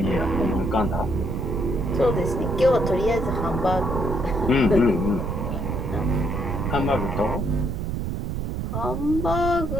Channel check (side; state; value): right; noise; rumble, 2 dB below the sound